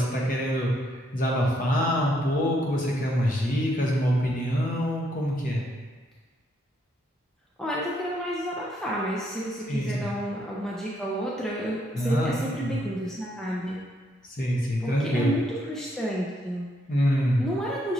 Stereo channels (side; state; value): both; normal; correlation 0.74